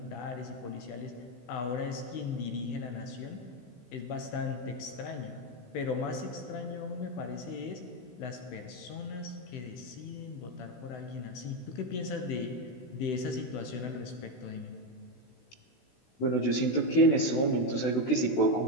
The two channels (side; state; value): right; late; 16 ms